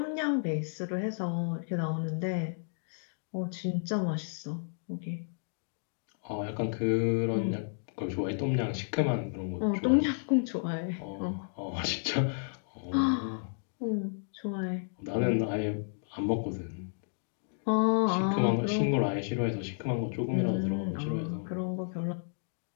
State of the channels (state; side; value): silent; right; digital silence